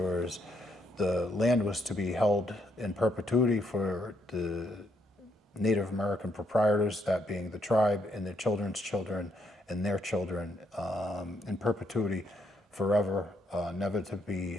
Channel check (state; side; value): normal; both; correlation 0.74